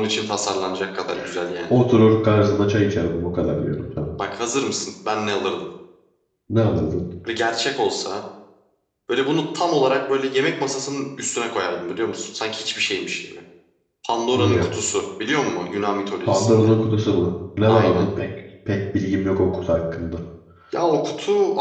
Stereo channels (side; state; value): both; identical; correlation 1.00